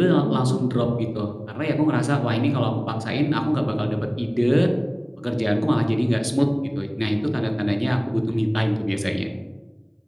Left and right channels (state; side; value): identical; both; correlation 1.00